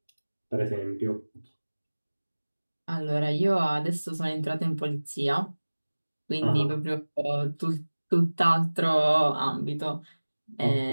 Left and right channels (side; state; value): both; inverted; correlation -1.00